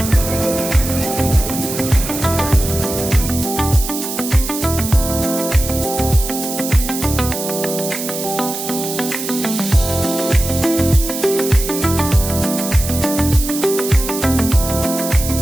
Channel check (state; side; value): noise; right; hiss, 6 dB below the sound